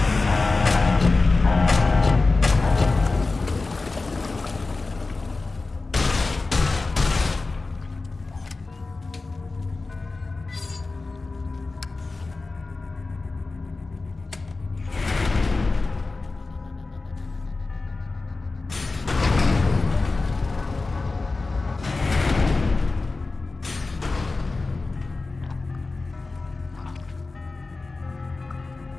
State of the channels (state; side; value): quieter; right; 3.6 dB